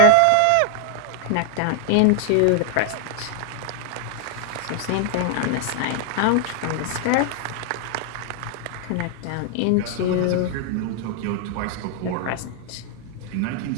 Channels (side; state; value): both; different; correlation 0.00